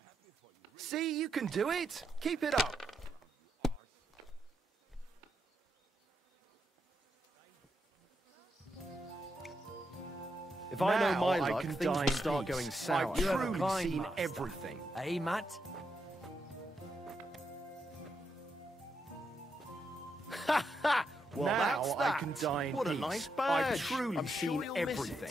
happy for you. See, you can do it. Keep it up. If I know my luck, things will start going sour. I've truly seen everything. Eh, Matt? Well, now I can die in peace. What a nice badge. I've truly seen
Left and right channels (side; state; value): both; normal; correlation 0.82